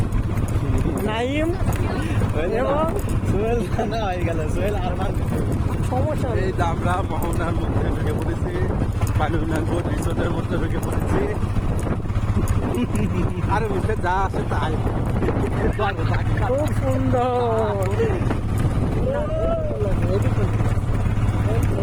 নাইম এবং সোহেল রানা হয়ে গেল, সোহেল আরমান। সমস্যা নেই। এই যে আমরা মোহনার মধ্যে ঢুকে পড়েছি, পানুনাঙ্গর রিসোর্টের মধ্যে ঢুকে পড়েছি। আরে মুখে যা আছে তাই, খুব সুন্দর,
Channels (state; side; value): identical; both; correlation 1.00